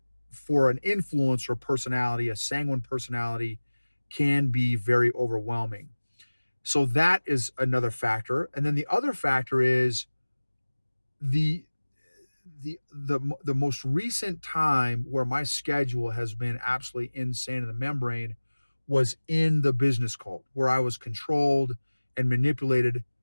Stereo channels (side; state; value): both; inverted; correlation -1.00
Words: for an influencer personality, a sanguine personality, can be very overwhelming. So that is another factor. And then the other factor is the most recent time where my schedule has been absolutely insane in the membrane was in the business cult, where I was controlled and manipulated.